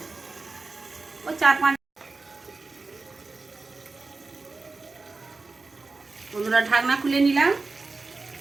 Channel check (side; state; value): left; quieter; 3.8 dB